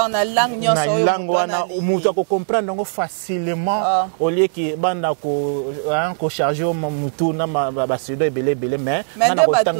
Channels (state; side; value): silent; left; 66 dB below the other